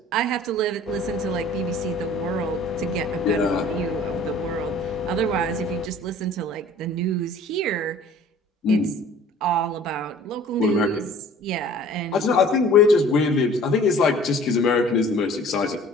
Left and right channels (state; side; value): normal; both; correlation 0.49